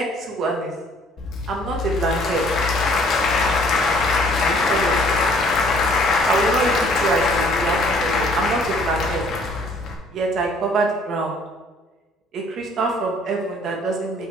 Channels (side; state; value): both; normal; correlation 0.59